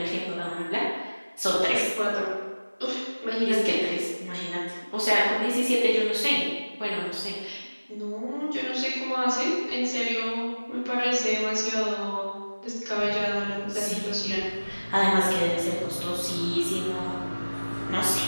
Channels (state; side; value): inverted; both; correlation -1.00